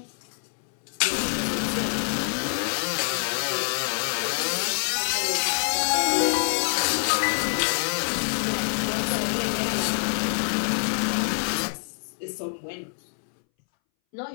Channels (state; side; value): silent; right; 61 dB below the other